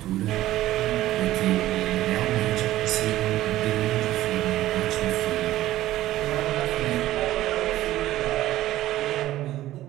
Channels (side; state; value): left; quieter; 14.9 dB